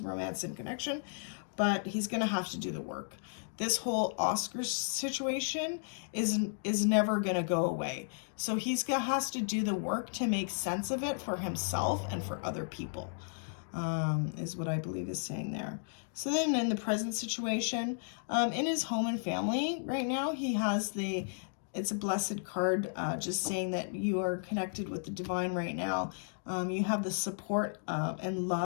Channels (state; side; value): silent; right; digital silence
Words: romance and connection, but he's going to have to do the work. This whole Oscar situation is never going to go away. So has to do the work to make sense of it for himself and for other people, is what I believe is saying there. So then in the present situation, in his home and family right now, he has it's a blessed card, just saying that you are connected with the divine right now. You have the support and